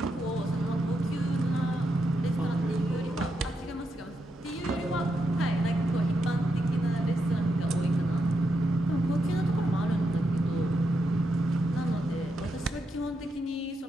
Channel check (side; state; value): both; normal; correlation 0.83